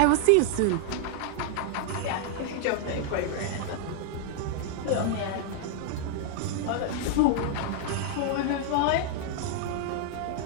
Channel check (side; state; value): both; different; correlation 0.00